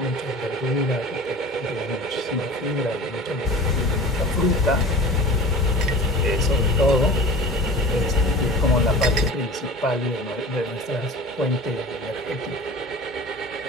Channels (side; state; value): both; normal; correlation 0.39